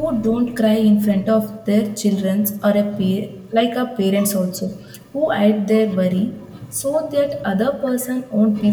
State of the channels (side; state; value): both; identical; correlation 1.00